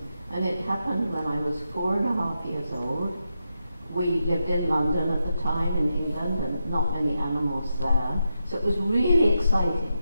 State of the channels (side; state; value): both; inverted; correlation -0.86